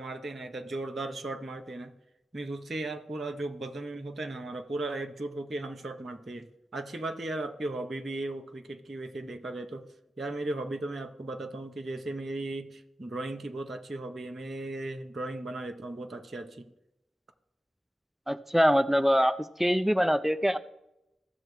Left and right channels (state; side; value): normal; both; correlation 0.94